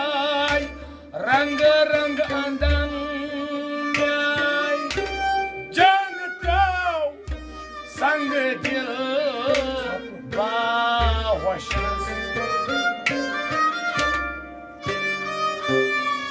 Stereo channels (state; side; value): identical; both; correlation 1.00